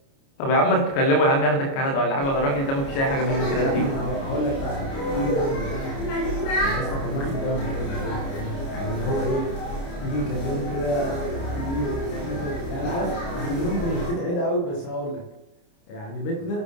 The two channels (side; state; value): right; late; 29 ms